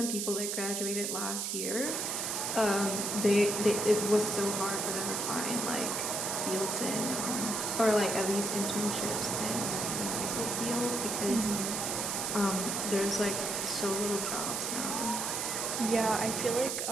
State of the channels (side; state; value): right; noise; hiss, 1 dB below the sound